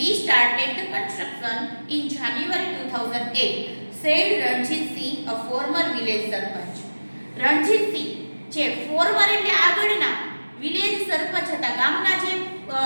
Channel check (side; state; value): both; inverted; correlation -1.00